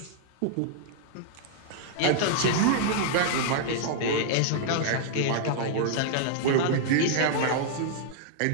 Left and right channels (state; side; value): different; both; correlation -0.01